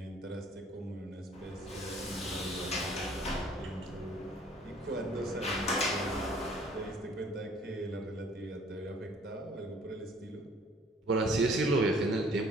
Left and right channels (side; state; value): both; normal; correlation 0.56